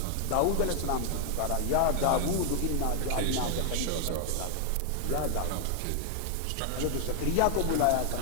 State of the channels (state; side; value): different; both; correlation 0.00